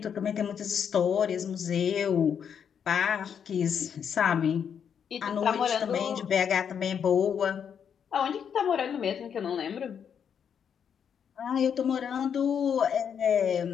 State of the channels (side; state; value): right; quieter; 7.7 dB